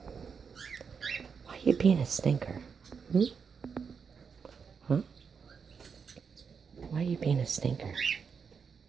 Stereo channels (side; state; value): left; quieter; 6.1 dB